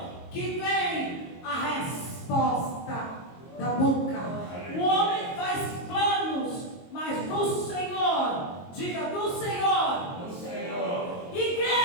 que vem a resposta da boca. O homem faz planos, mas do Senhor, diga do Senhor, Do Senhor.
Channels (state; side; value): late; right; 22 ms